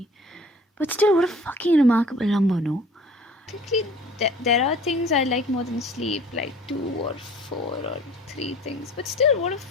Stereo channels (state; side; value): normal; both; correlation 0.48